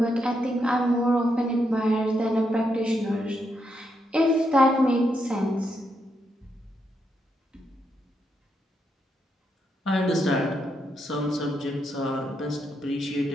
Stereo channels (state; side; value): normal; both; correlation 0.81